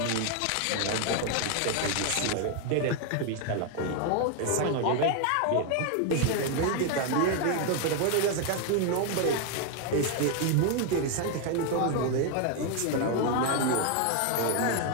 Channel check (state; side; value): different; both; correlation 0.01